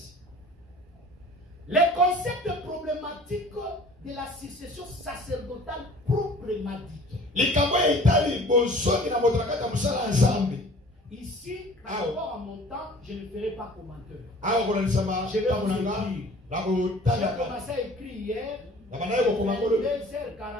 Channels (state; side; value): normal; both; correlation 0.48